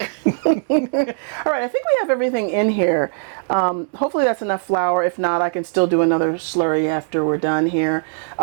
All right, I think we have everything in here. Hopefully that's enough flour. If not, I can still do another slurry after we're done here.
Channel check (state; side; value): silent; left; 66 dB below the other